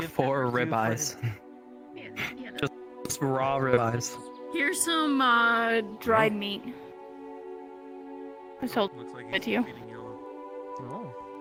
4 ribeyes. Just raw ribeyes. Here's some dried meat. I sold it to you. Oh.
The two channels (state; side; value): identical; both; correlation 1.00